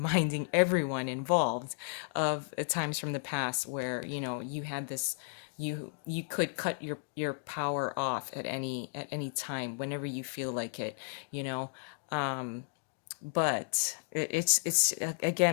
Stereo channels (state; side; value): silent; right; digital silence